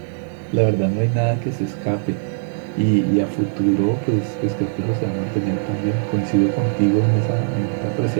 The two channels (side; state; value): left; silent; digital silence